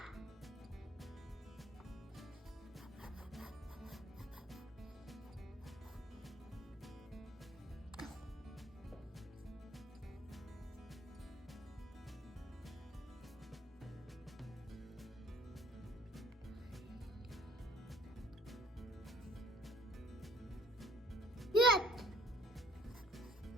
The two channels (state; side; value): normal; both; correlation 0.58